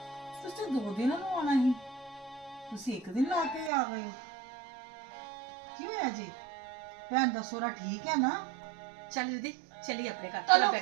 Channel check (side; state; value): left; drops out; at 3.7 s